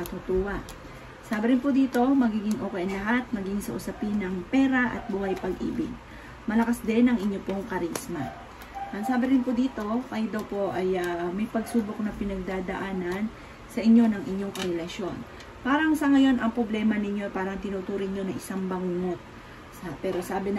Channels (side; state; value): both; identical; correlation 1.00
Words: Sabi rin po dito, magiging okay ang lahat, maging sa usapin ng pera at buhay pag-ibig. Malakas din ang inyo pong karisma. Ang sabi rin po dito, kayo daw po ay may pagsubok na pinagdadaanan sa inyo ng inyong karelasyon. Parang sa ngayon, ang problema ninyo parang tinuturing nyo na isang bangungot. Pero sabi ng